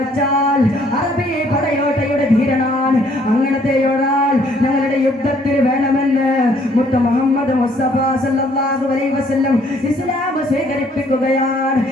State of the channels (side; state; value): both; normal; correlation 0.63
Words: അറബി പടയോട്ടയുടെ ധീരനാണ്, അങ്ങനത്തെ ഒരാൾ ഞങ്ങളുടെ യുദ്ധത്തിൽ വേണമെന്ന് മുത്ത് മുഹമ്മദ് മുസ്തഫ സല്ലല്ലാഹു അലൈഹി വസല്ലം ഇസ്ലാം സ്വീകരിപ്പിക്കുകയാണ്.